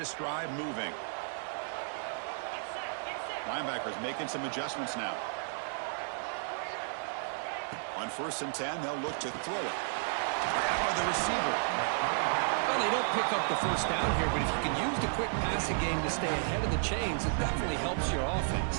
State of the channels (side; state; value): left; silent; digital silence